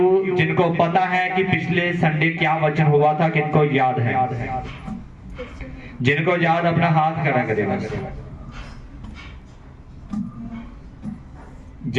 जिनको पता है कि पिछले संडे क्या वचन हुआ था, किनको याद है? जिनको याद अपना हाथ खड़ा करेगा।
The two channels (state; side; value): identical; both; correlation 1.00